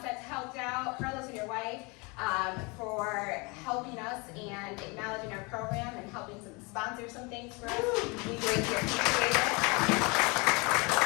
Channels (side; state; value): right; quieter; 28.5 dB